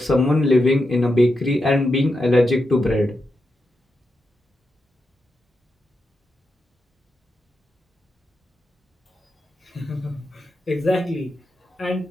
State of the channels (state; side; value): normal; both; correlation 0.87